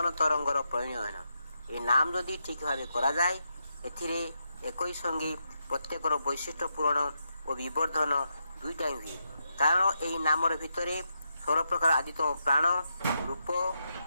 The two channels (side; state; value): both; inverted; correlation -0.83